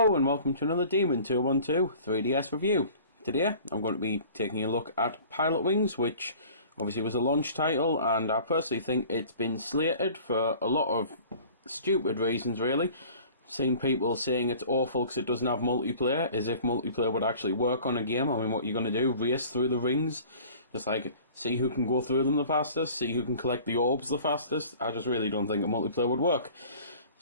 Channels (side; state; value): both; inverted; correlation -0.46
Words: and welcome to another Demon 212 3DS review. Today I'm going to be taking a look at Pilotwings, which obviously was a launch title, and I personally think it's been slated for a lot of stupid reasons really. Seen people saying it's awful because it doesn't have multiplayer, as if multiplayer would actually work on a game. I mean, what you're going to do, race through the rings, just like see who can go through them the fastest, see who can collect the orbs the fastest. I just really don't think a multiplayer would work.